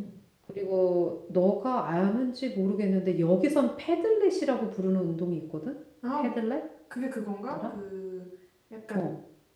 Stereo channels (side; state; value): both; identical; correlation 1.00